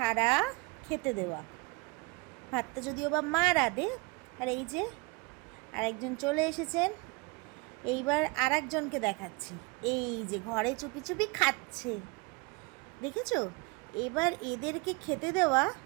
খেতে দেওয়া। ভাতটা যদিও বা মা রাঁধে। আর এই যে আরেকজন চলে এসেছেন, এইবার আর একজনকে দেখাচ্ছি। এই যে ঘরে চুপি চুপি খাচ্ছে, দেখেছো? এবার এদেরকে খেতে দেওয়া।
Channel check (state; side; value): quieter; left; 27.0 dB